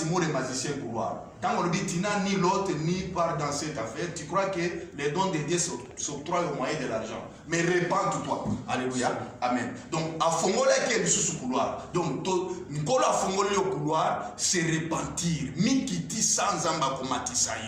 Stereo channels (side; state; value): both; identical; correlation 1.00